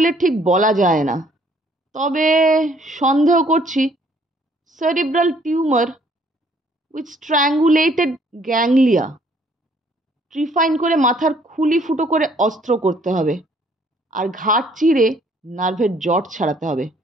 ঠিক বলা যায় না, তবে সন্দেহ করছি সেরিব্রাল টিউমার উইথ স্ট্র্যাঙ্গুলেটেড গ্যাংলিয়া। ট্রিফাইন করে মাথার খুলি ফুটো করে অস্ত্র করতে হবে, আর ঘাট চিরে নার্ভের জট ছাড়াতে হবে।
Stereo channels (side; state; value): both; normal; correlation 0.62